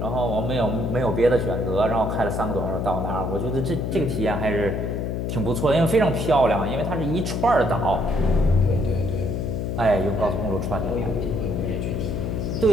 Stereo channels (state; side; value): noise; left; hum, 2 dB below the sound